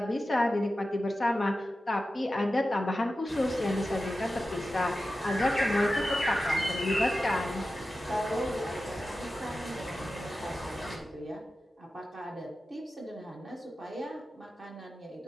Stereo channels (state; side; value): normal; both; correlation 0.93